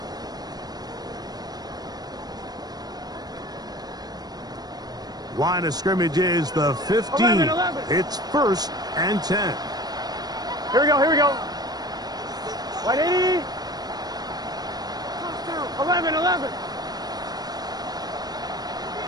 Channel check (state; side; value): late; left; 0.19 ms